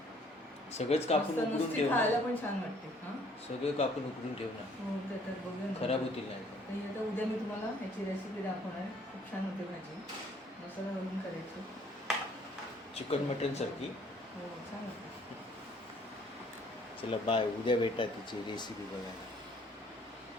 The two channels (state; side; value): normal; both; correlation 0.60